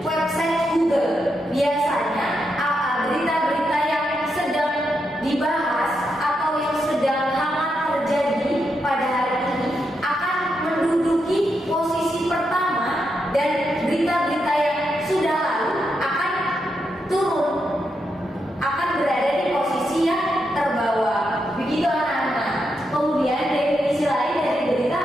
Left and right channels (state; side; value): normal; both; correlation 0.83